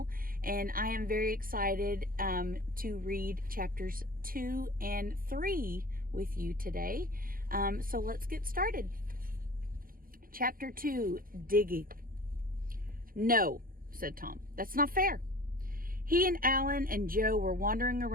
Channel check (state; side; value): late; left; 0.41 ms